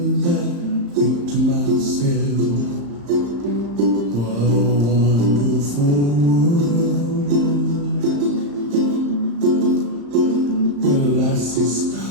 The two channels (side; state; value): left; late; 35 ms